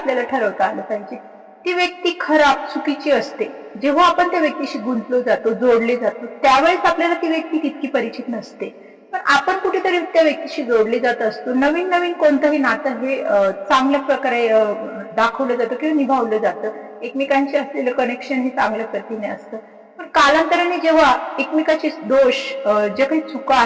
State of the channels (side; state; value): both; identical; correlation 1.00